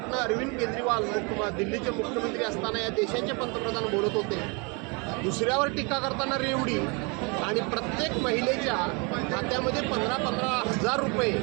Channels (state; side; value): quieter; left; 31.1 dB